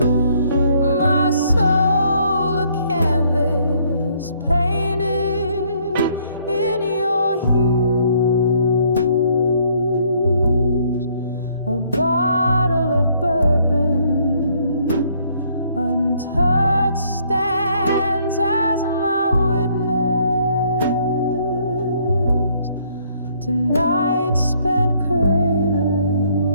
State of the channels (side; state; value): both; inverted; correlation -0.66